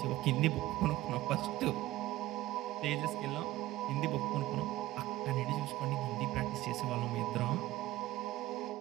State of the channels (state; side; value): quieter; left; 16.4 dB